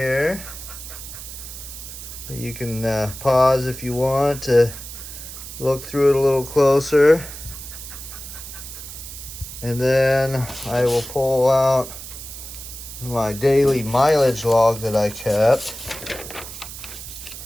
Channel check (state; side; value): noise; right; hiss, 11 dB below the sound